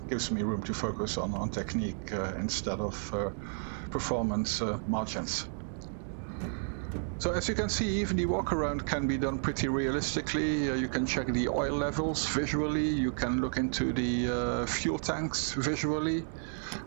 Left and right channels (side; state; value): left; silent; digital silence